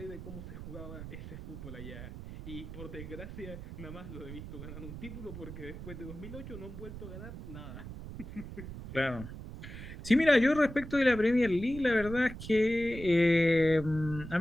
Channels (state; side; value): noise; right; rumble, 11 dB below the sound